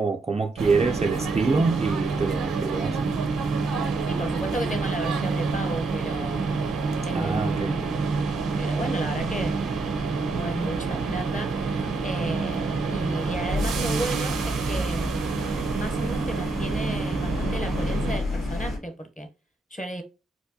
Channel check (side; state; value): left; quieter; 3.2 dB